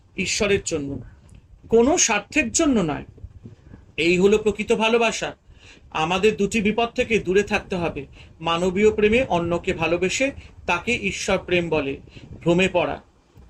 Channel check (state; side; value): identical; both; correlation 1.00